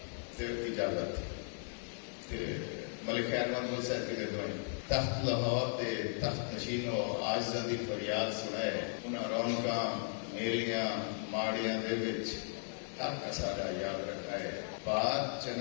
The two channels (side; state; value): right; silent; 53 dB below the other